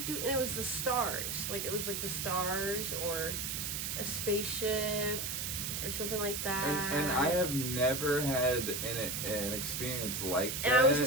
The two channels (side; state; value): right; noise; hiss, 2 dB below the sound